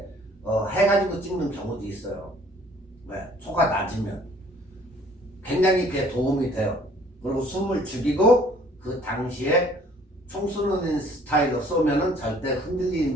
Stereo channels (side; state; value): both; normal; correlation 0.56